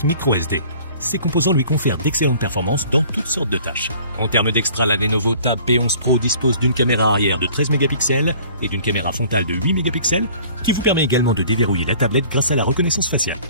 microSD. Ces composants lui confèrent d'excellentes performances dans toutes sortes de tâches. En termes d'extra, la Lenovo Tab P11 Pro dispose d'une caméra arrière de 13 mégapixels et d'une caméra frontale de 8 mégapixels qui vous permet également de déverrouiller la tablette grâce à la reconnaissance faciale.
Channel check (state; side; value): inverted; both; correlation -0.50